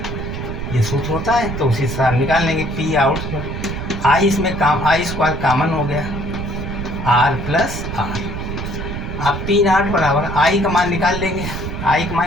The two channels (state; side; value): noise; right; rumble, 6 dB below the sound